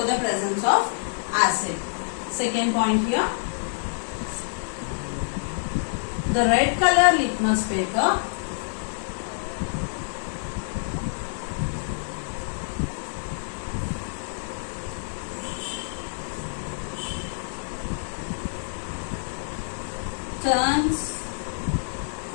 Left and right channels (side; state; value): right; silent; 60 dB below the other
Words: the presence of acid. Second point here. The red color litmus paper turns